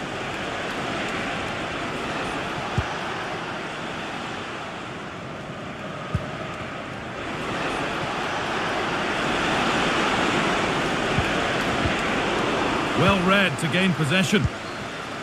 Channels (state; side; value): identical; both; correlation 1.00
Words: Well read to gain possession.